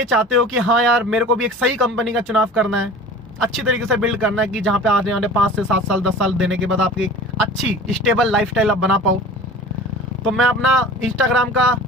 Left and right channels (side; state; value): both; normal; correlation 0.40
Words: चाहते हो कि हाँ यार मेरे को भी एक सही कंपनी का चुनाव करना है, अच्छी तरीके से बिल्ड करना है कि जहाँ पे आने वाले 5 से 7 साल 10 साल देने के बाद आपकी एक अच्छी स्टेबल लाइफस्टाइल आप बना पाओ, तो मैं अपना इंस्टाग्राम का